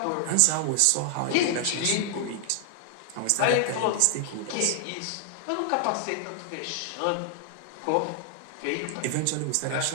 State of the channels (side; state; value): both; different; correlation 0.00